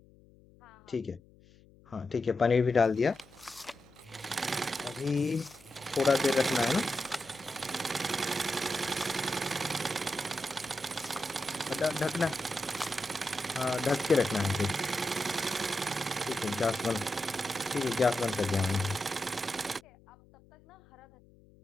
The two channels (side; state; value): left; noise; hum, 26 dB below the sound